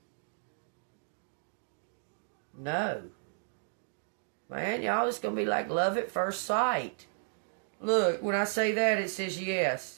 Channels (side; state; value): left; silent; digital silence